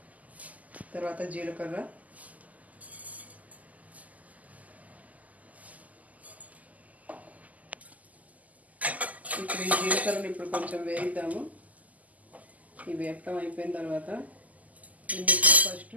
తర్వాత జీలకర్ర, ఇప్పుడు ఈ జీలకర్రని ఇప్పుడు కొంచెం వేయిద్దాము. ఈ వేపటం అయిపోయిన తర్వాత ఇందులో ఫస్ట్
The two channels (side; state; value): left; late; 0.076 ms